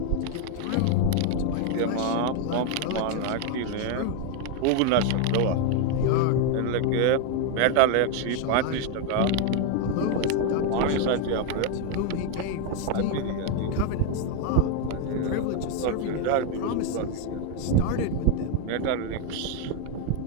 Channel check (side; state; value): both; different; correlation 0.01